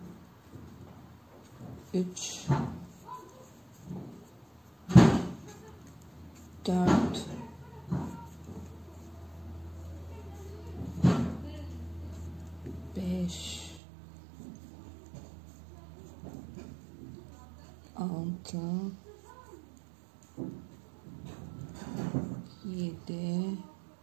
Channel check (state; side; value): drops out; left; at 13.8 s